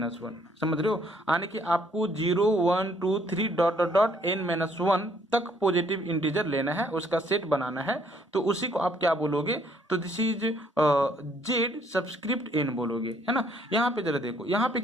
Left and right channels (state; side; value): normal; both; correlation 0.65